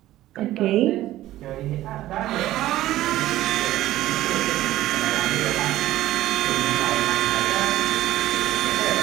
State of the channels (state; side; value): quieter; left; 14.9 dB